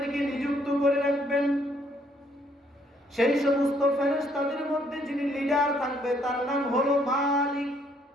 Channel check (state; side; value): normal; both; correlation 0.67